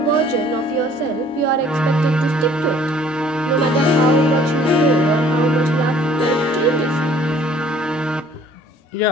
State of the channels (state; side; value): normal; both; correlation 0.56